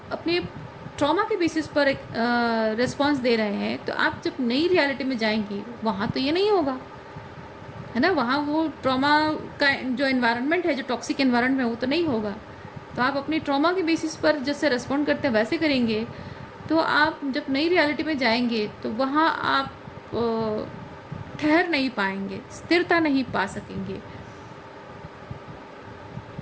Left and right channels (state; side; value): identical; both; correlation 1.00